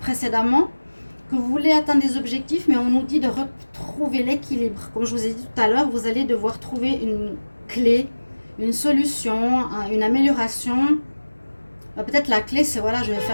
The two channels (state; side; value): inverted; both; correlation -1.00